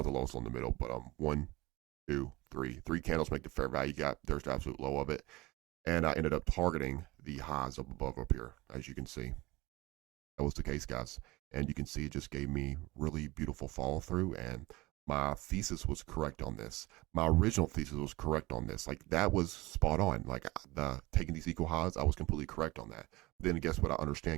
lowest on the middle, but 1, 2, 3. 3 candles make the fair value gap. There's the absolute low of it. And I ended up targeting the highs up above up here, as you can see. That was the case, guys. And you can see it just gave me really beautiful follow through. And my thesis was correct on this. My original thesis was correct on this. Like that was spot on. Like the taking these equal highs, I was completely correct on that. Then guess what? I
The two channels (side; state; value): left; quieter; 21.3 dB